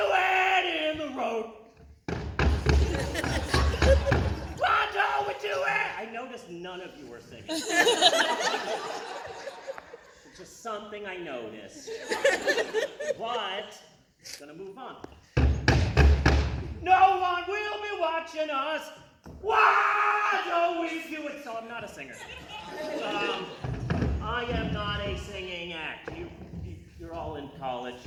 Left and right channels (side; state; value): both; identical; correlation 1.00